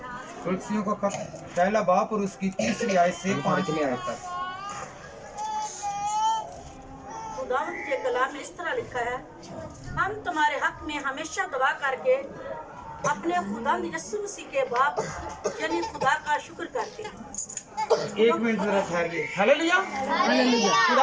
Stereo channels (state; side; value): identical; both; correlation 1.00